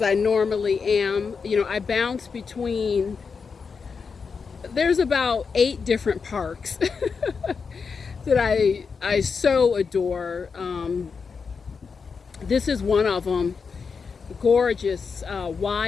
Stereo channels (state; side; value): quieter; right; 5.4 dB